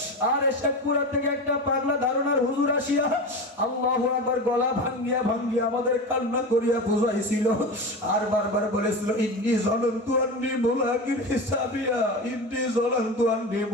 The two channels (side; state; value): both; normal; correlation 0.25